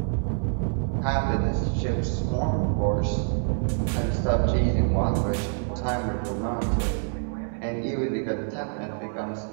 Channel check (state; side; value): silent; left; 59 dB below the other